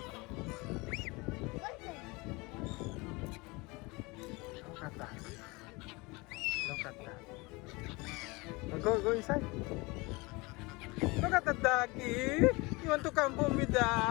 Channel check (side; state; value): right; quieter; 25.0 dB